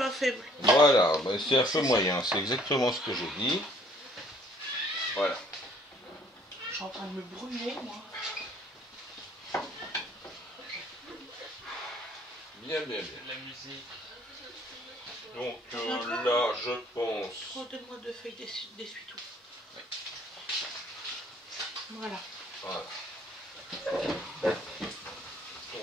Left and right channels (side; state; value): both; normal; correlation 0.59